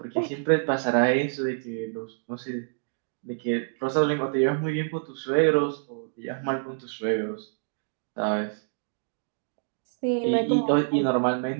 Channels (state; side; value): silent; left; digital silence